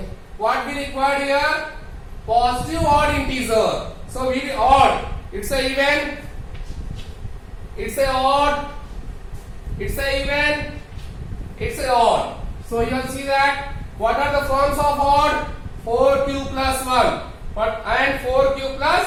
what we required here? Positive odd integer. So we odd. It's a even. It's a odd. It's a even. It's a odd. So you will see that what are the forms of odd? 4q plus 1 and 4q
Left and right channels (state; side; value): identical; both; correlation 1.00